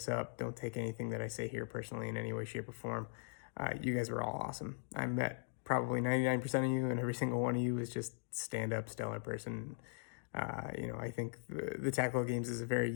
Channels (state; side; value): silent; right; digital silence